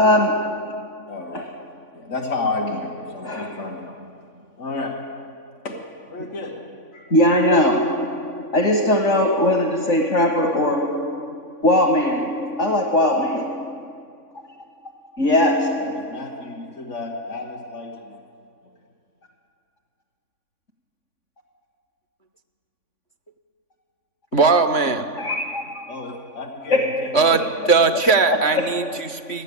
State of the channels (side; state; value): right; late; 3.5 ms